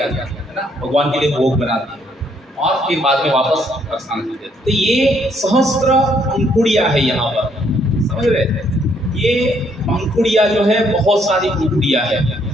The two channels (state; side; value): normal; both; correlation 0.69